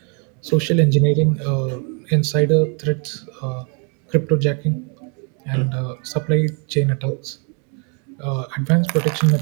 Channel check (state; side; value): quieter; left; 37.4 dB